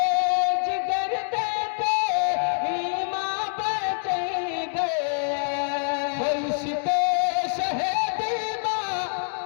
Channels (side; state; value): right; silent; digital silence